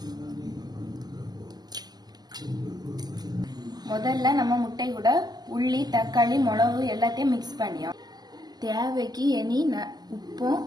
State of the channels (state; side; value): late; left; 0.20 ms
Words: முதல்ல நம்ம முட்டை கூட உள்ளி, தக்காளி, மிளகு எல்லாத்தையும் மிக்ஸ் பண்ணியோம். தேவைக்கு இனி உப்பும்